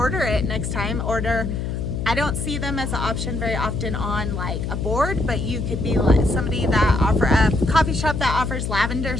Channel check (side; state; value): left; noise; hum, 3 dB below the sound